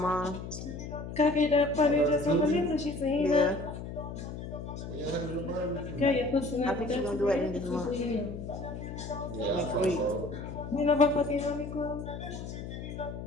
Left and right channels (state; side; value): noise; left; hum, 8 dB below the sound